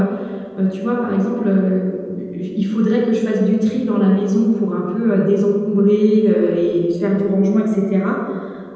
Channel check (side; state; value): both; identical; correlation 1.00